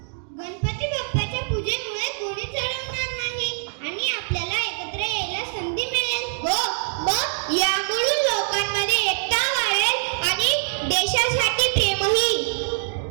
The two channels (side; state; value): left; silent; digital silence